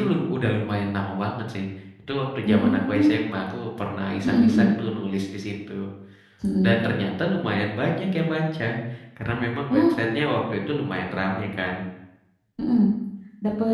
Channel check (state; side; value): identical; both; correlation 1.00